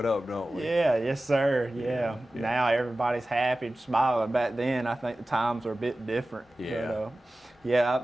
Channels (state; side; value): normal; both; correlation 0.96